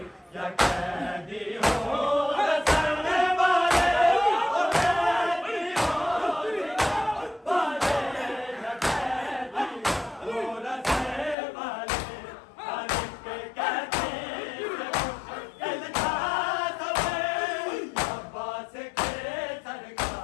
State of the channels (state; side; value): drops out; right; at 11.4 s